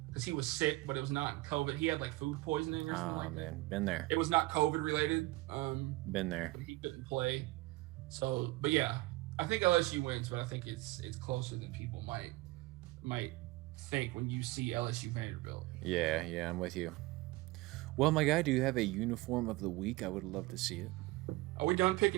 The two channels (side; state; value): left; quieter; 20.3 dB